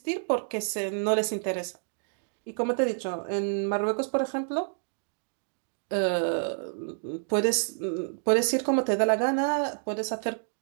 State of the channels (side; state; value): left; silent; digital silence